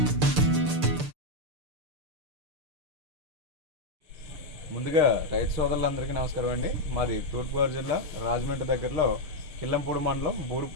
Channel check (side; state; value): left; late; 6.7 ms